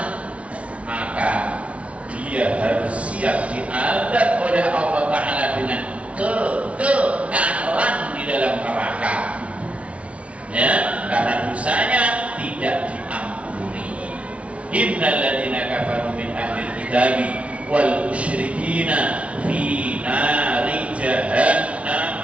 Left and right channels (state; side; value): late; left; 0.063 ms